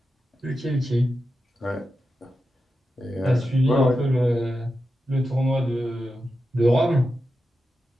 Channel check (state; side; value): normal; both; correlation 0.90